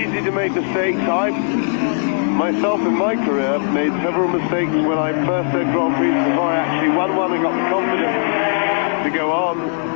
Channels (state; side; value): silent; right; 67 dB below the other